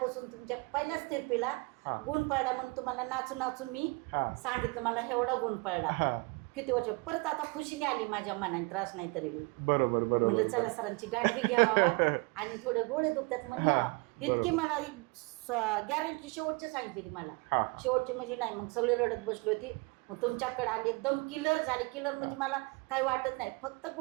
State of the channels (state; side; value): quieter; left; 28.3 dB